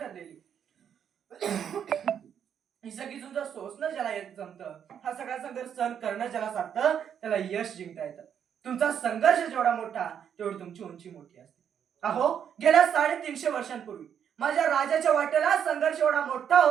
ही सगळी झुंज सोसणं ज्याला जमतं, हा सगळा संघर्ष सहन करणं ज्याला साधतं, त्याला यश जिंकता येतं. तुमचा संघर्ष जेवढा मोठा तेवढी तुमची उंची मोठी असते. अहो गेल्या 350 वर्षांपूर्वी माझ्या राजाच्या वाटेला संघर्ष एवढा मोठा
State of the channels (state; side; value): quieter; left; 8.5 dB